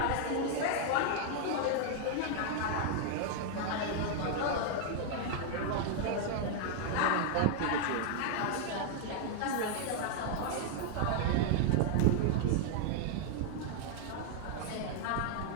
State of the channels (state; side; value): different; both; correlation 0.00